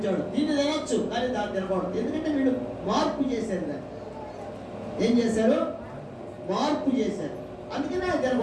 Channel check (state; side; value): identical; both; correlation 1.00